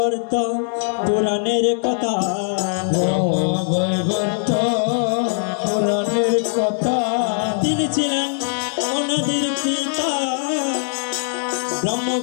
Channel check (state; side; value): silent; right; digital silence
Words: পুরাণের কথা বৈবর্ত পুরাণের কথা তিনি ছিলেন অনাদির পিতা ব্রহ্ম